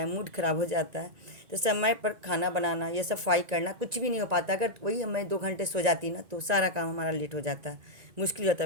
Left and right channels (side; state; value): left; late; 1.9 ms